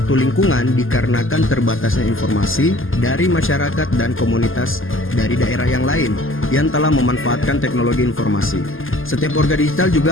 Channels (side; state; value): right; late; 0.59 ms